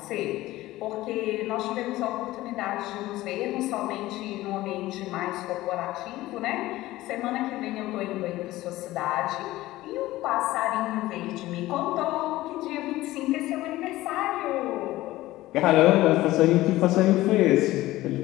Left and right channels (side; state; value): right; quieter; 17.0 dB